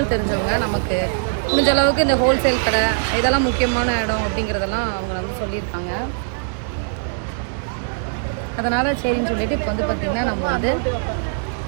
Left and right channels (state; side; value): silent; left; digital silence